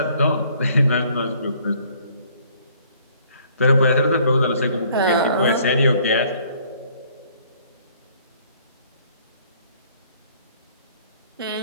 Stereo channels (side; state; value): both; inverted; correlation -0.60